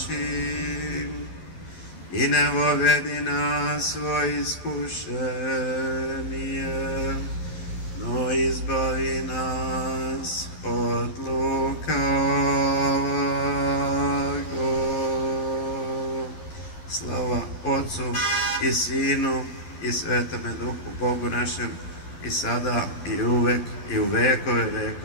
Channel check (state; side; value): late; right; 12 ms